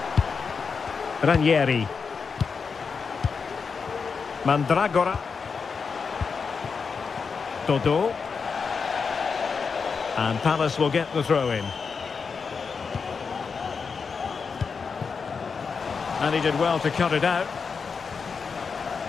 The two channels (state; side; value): quieter; right; 5.4 dB